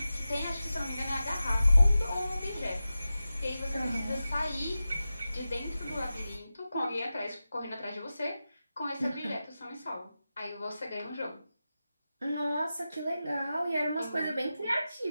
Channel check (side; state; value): both; inverted; correlation -0.93